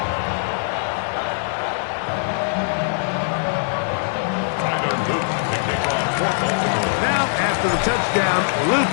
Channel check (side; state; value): right; silent; digital silence